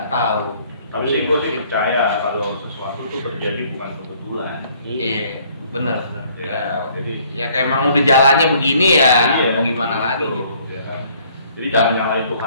tahu. Tapi sih gue sih percaya kalau sesuatu itu terjadi bukan kebetulan. Iya, benar. Ya, jadi ya kayak emang udah jalannya begini ya, mau gimana lagi gitu. Ya kan? Jadi jangan nyalain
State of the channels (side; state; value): both; inverted; correlation -0.60